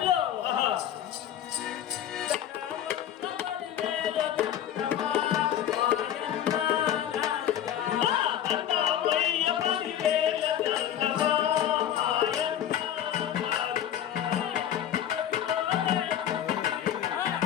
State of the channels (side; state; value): right; quieter; 10.5 dB